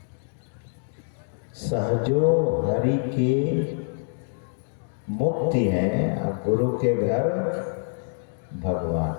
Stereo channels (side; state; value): right; silent; digital silence